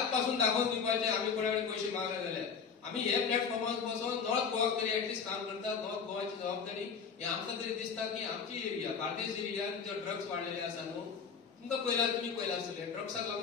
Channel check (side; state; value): right; quieter; 6.1 dB